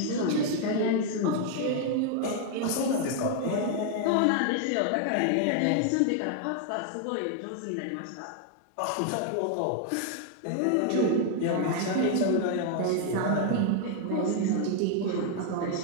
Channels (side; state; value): both; different; correlation 0.00